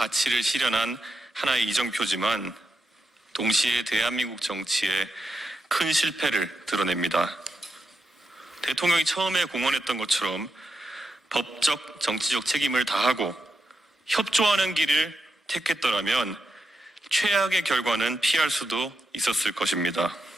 실현한 하나의 이정표지만 동시에 대한민국 정치의 큰 실패를 드러냅니다. 대통령이 처음에 공언했던 것처럼 법적, 정치적 책임을 다하고 협조하는 길을 택했더라면 최악의 결과는 피할 수도 있었을 것입니다.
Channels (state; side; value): normal; both; correlation 0.85